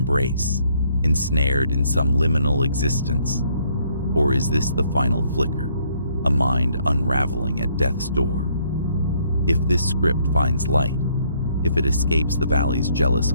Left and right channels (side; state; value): both; inverted; correlation -0.68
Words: ensnared in some liminal existence? Or is this the final flicker, a mind unraveling at death's door? If this script finds light, if it escapes the valley's jealous